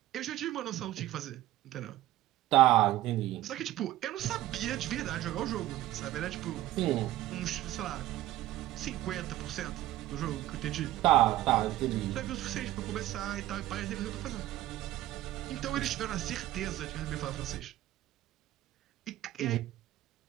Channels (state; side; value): quieter; left; 14.8 dB